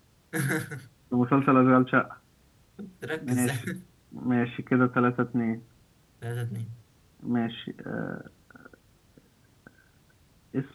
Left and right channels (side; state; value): both; identical; correlation 1.00